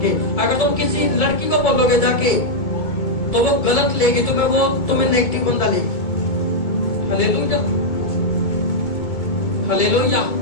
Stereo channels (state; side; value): late; right; 2.2 ms